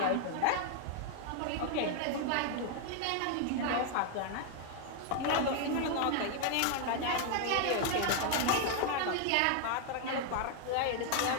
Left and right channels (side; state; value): both; different; correlation 0.00